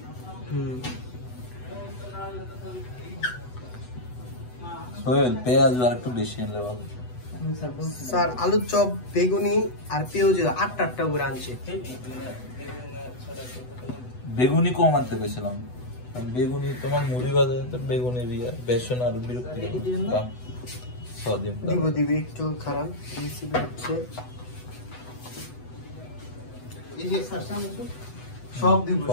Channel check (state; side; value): late; right; 8.1 ms